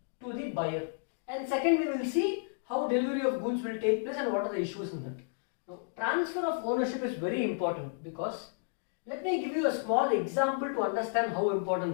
to the buyer? And second, we will see how delivery of goods will take place and what are the issues in that. Now, transfer of ownership is very important because let me give you a small example to understand how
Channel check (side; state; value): right; silent; digital silence